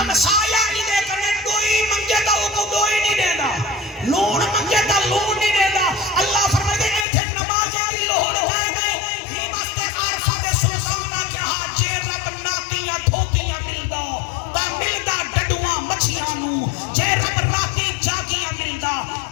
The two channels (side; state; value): right; drops out; at 7.1 s